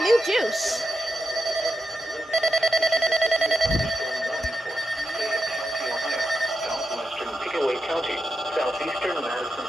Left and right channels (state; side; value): normal; both; correlation 0.87